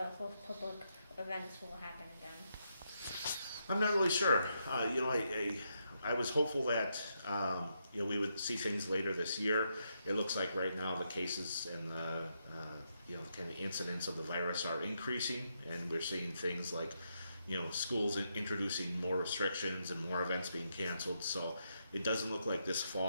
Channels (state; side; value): inverted; both; correlation -0.80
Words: whole public events will happen again? I'm not really sure. I was hopeful that we would see things later this year. It looks like right now the cases and the kind of incidents of the virus are increasing, and we're seeing things like schools introducing more restrictions and more events being canceled. So it doesn't look like this